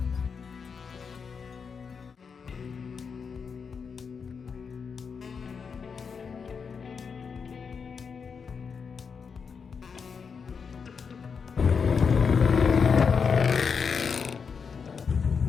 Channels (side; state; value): right; quieter; 5.9 dB